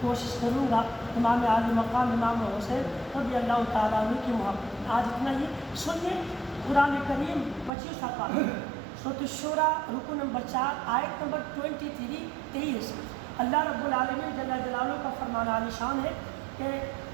کوشش کروں گا، امام عالی مقام امام حسین رضی اللہ تعالیٰ عنہ کی محبت میں۔ آج اتنا ہی سنیے، قرآن کریم 25 آپات سورۃ الشورى رکو نمبر 4 آیت نمبر 23 اللہ رب العالمین جل جلالہ کا فرمان عالی شان ہے کہ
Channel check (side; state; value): left; drops out; at 7.7 s